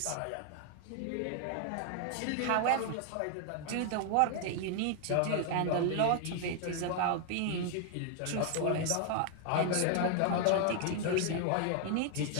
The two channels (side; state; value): both; different; correlation 0.00